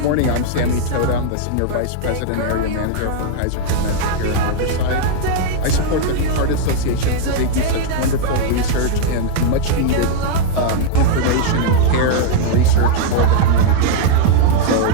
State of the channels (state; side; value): different; both; correlation -0.01